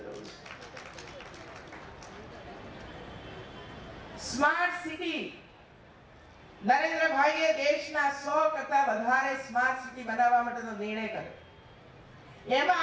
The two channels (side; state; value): both; identical; correlation 1.00